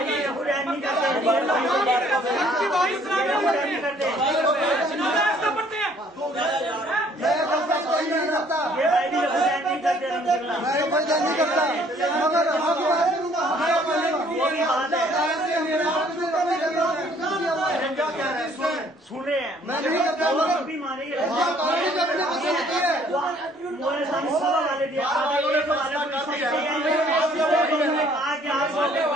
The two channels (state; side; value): normal; both; correlation 0.60